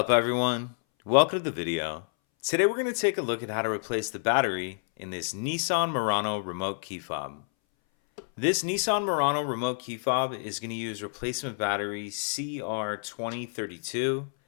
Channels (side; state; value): right; silent; 59 dB below the other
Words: everyone? Welcome to the video. Today we're going to take a look at how to replace the battery in this Nissan Murano remote key fob. This Nissan Murano remote key fob is going to use replacement battery CR2032,